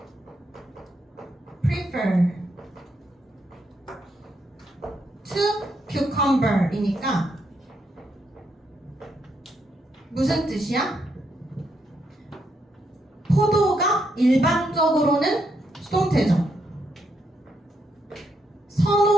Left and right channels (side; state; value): both; normal; correlation 0.78